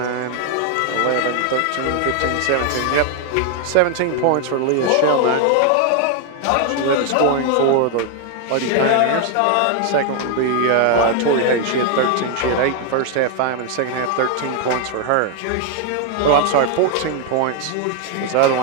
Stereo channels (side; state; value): both; different; correlation 0.00